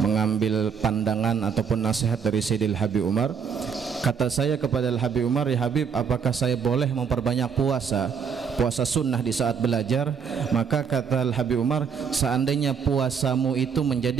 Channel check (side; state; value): left; quieter; 6.7 dB